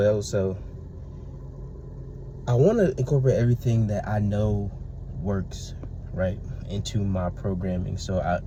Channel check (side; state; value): both; identical; correlation 1.00